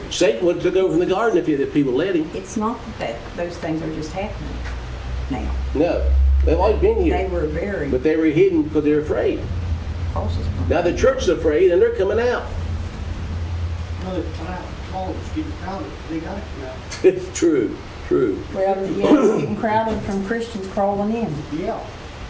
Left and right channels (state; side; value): identical; both; correlation 1.00